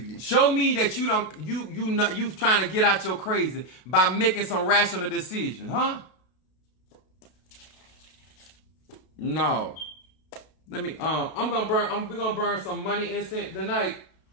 Show me that you trying to get out your crazy by making some rational decisions, huh? No. Let me we're gonna burn some money incense tonight.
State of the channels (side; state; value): right; late; 32 ms